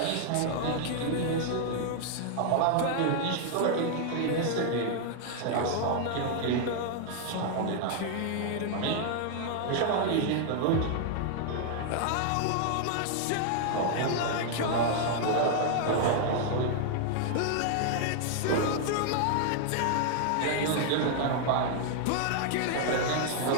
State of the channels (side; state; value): both; different; correlation 0.00